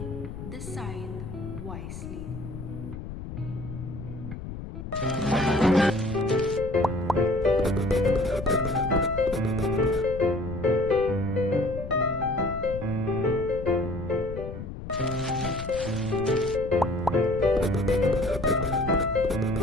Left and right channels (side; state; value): left; noise; rumble, 9 dB below the sound